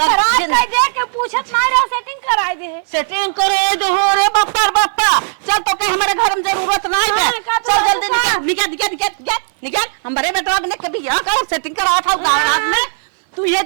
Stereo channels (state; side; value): silent; left; digital silence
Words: खराब कर दे के पूछत ना रहा, सेटिंग कराई दे। सेटिंग करे दो रे बापा बापा। चल तो के हमारे घर में जरूरत नहीं है, चल जल्दी निकल निकल निकल निकल निकल। हमारे बेटवा ने कभी बियाह कर सेटिंग करा था गाँव में, तू ये